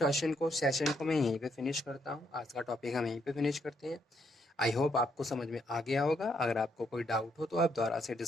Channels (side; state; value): both; normal; correlation 0.74